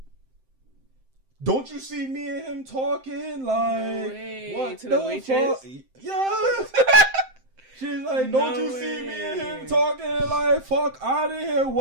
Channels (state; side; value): late; left; 7.7 ms